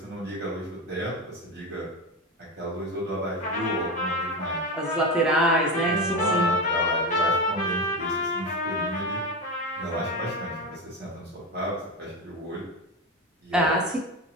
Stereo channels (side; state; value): both; normal; correlation 0.19